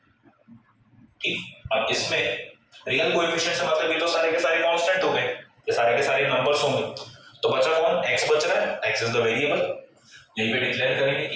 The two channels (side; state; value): both; identical; correlation 1.00